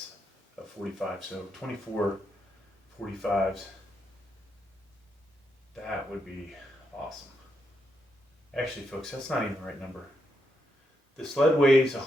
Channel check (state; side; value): normal; both; correlation 0.81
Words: of 45, so 24 45s. That would be awesome. Actually, folks, that's not even the right number. The sled weighs